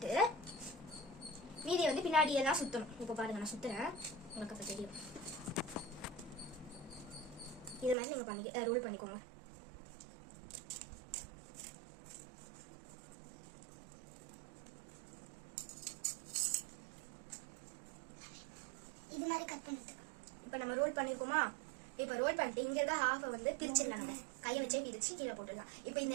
மீதியை வந்து பின்னாடி எல்லாம் சுத்தணும். இப்போ பாருங்க நான் சுத்துறேன், உங்களுக்கு அப்ப தெரியும். இது மாதிரி நீங்க ரோல் பண்ணிக்கோங்க. இது மாதிரி கட் பண்ணிட்டு இப்போ நம்ம ரோல் பண்ணிருக்கோமா. இப்போ ரோல் பண்ணிட்டு இங்க இருக்க ஹாஃப் வந்து பிரிச்சிடலாம். நம்ம கையை வச்சே பிரிச்சு கீழே போட்டுடலாம். இப்போ இந்த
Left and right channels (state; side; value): drops out; left; at 8.0 s